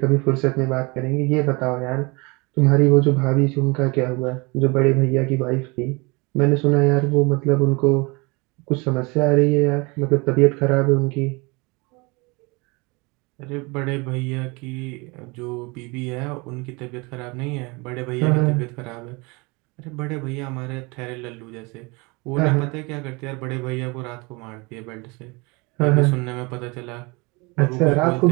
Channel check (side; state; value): left; quieter; 27.0 dB